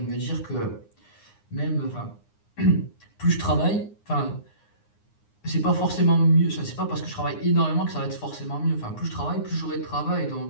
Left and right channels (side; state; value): right; late; 9.7 ms